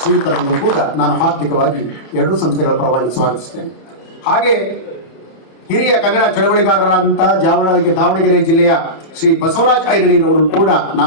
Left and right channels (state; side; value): late; right; 31 ms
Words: ಕೂಡ ನಾನು ಹಾರ್ದಿಕವಾಗಿ ಎರಡೂ ಸಂಸ್ಥೆಗಳ ಪರವಾಗಿ ಸ್ವಾಗತಿಸ್ತೇನೆ. ಹಾಗೆ ಹಿರಿಯ ಕನ್ನಡ ಚಳವಳಿಗಾರರಾದಂತಹ ದಾವಣಗೆರೆ ಜಿಲ್ಲೆಯ ಶ್ರೀ ಬಸವರಾಜ್ ಐರಣೀರವರನ್ನು ಕೂಡ